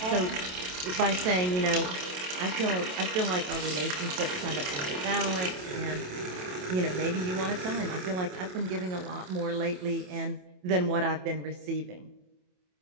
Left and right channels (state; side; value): late; left; 27 ms